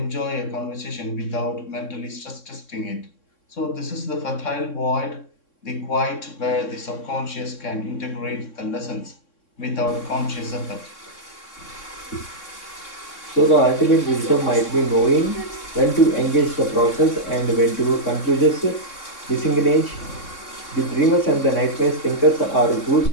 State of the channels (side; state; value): right; late; 3.6 ms